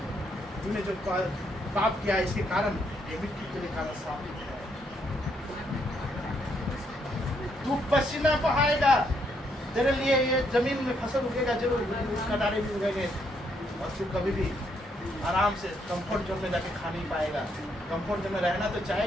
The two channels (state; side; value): normal; both; correlation 0.74